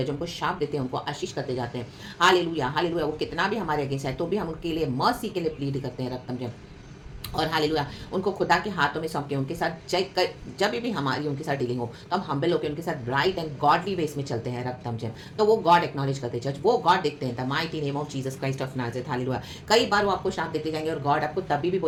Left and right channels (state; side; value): identical; both; correlation 1.00